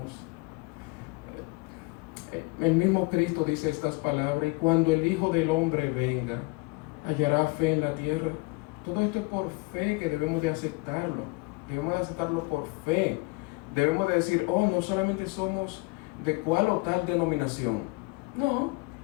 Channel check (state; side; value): quieter; right; 26.1 dB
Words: el mismo Cristo dice estas palabras, y cuando el Hijo del Hombre venga, hallará fe en la tierra. Todo esto es por fe que debemos de aceptarlo. Debemos de aceptarlo por fe. Debemos de decir, oh, no solamente somos de cuál o tal denominación. No.